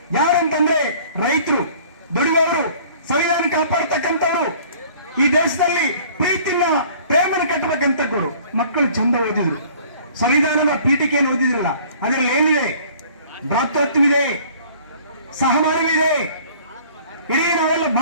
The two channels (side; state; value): both; inverted; correlation -0.52